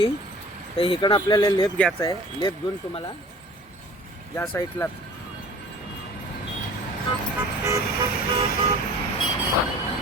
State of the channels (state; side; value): normal; both; correlation 0.46